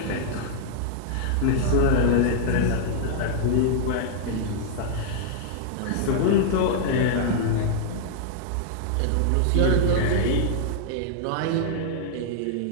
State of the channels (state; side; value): different; both; correlation -0.01